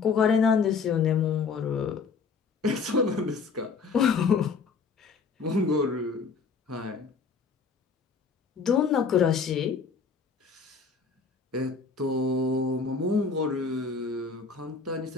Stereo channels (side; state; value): right; quieter; 5.1 dB